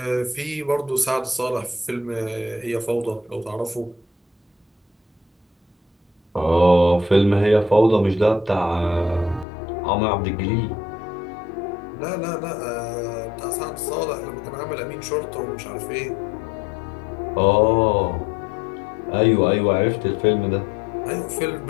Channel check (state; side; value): drops out; right; at 9.5 s